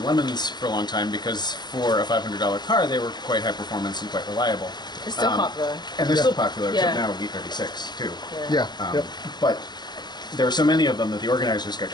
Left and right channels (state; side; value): late; right; 0.21 ms